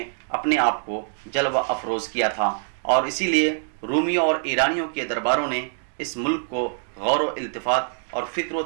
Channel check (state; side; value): silent; left; digital silence